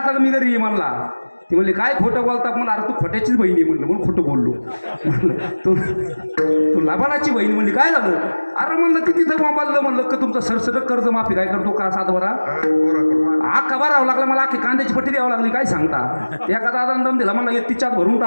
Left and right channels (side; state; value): both; inverted; correlation -1.00